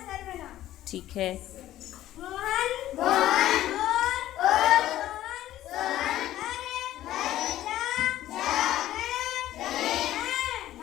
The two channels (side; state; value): right; quieter; 13.7 dB